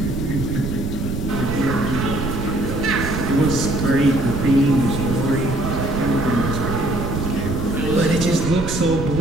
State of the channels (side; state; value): right; noise; rumble, 4 dB below the sound